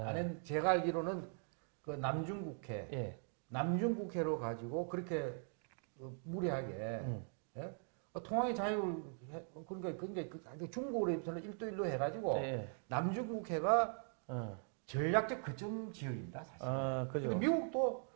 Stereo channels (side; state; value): left; silent; 50 dB below the other